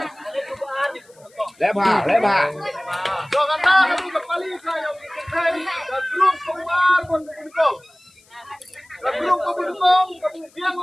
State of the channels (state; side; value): noise; left; hiss, 30 dB below the sound